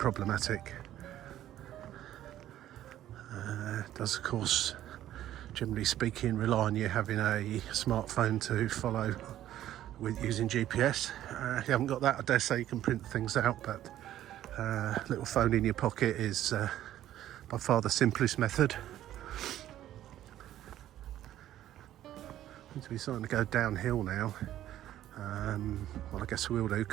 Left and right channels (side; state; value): left; quieter; 12.6 dB